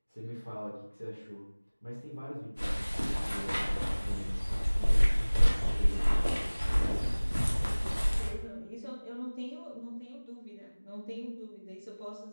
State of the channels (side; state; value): both; inverted; correlation -1.00